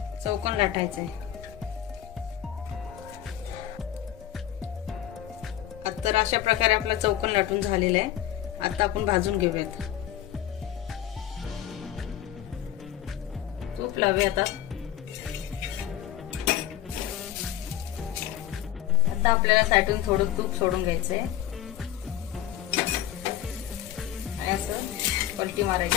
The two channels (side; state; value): right; quieter; 11.9 dB